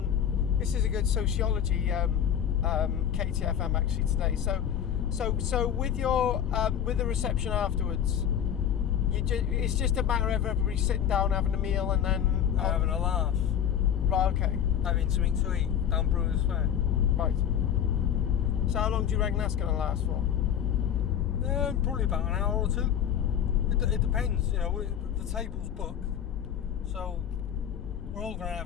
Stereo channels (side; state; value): right; quieter; 9.2 dB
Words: this is a good sociology KTFM actually today. So with your with the reception afterwards, it's just a matter of everybody sitting down having a meal and then Having a laugh, right, okay, having something to eat down Brewers Fair. right. So how long do you reckon that's going to last for? Probably about an hour or two. It depends, you know. The table's booked, so we're all going to